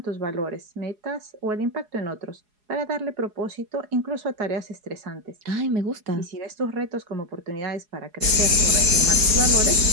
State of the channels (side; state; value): left; late; 4.8 ms